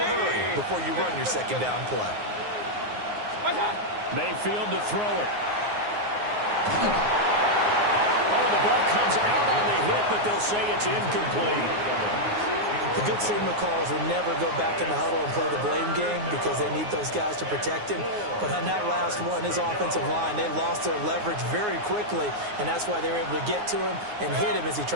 before you run your 2nd down play. Mayfield to throw it. Oh, the ball comes out on the hit, but they'll say it's incomplete. The good signal callers will never go back in the huddle and play the blame game because they need those guys to protect him. But on that last one, his offensive line, they lost their leverage very quickly, and that's why they were able to get to him and hit him as he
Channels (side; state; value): left; late; 9.6 ms